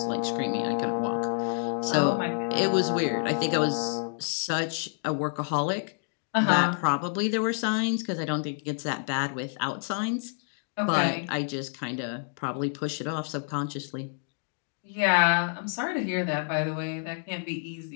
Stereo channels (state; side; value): silent; right; 59 dB below the other